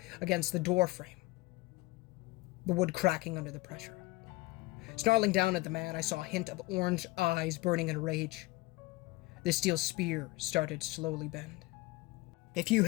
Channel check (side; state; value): right; quieter; 21.1 dB